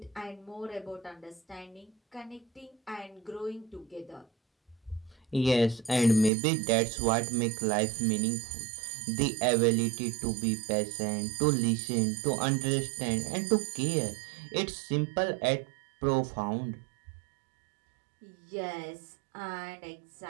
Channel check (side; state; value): left; drops out; at 6.3 s